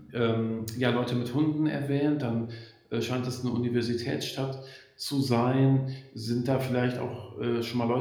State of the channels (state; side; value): identical; both; correlation 1.00